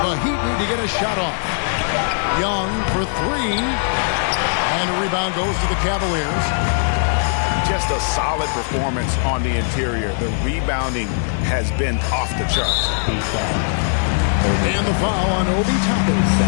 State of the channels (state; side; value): silent; right; digital silence